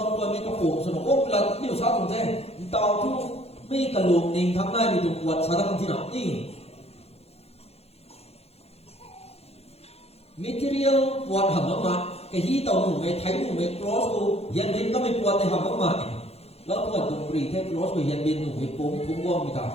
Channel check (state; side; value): late; right; 0.30 ms